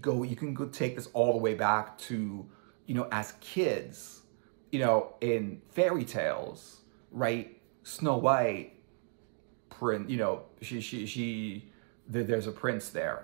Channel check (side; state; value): left; silent; 55 dB below the other